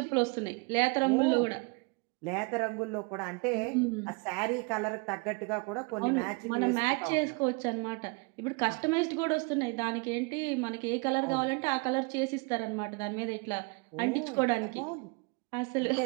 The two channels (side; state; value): left; quieter; 30.3 dB